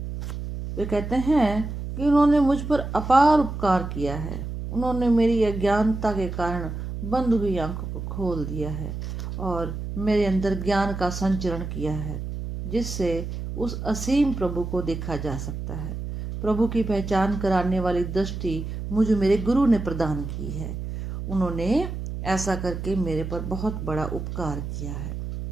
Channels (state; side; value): noise; right; hum, 6 dB below the sound